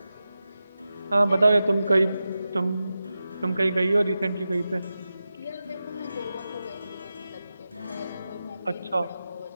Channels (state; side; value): inverted; both; correlation -0.92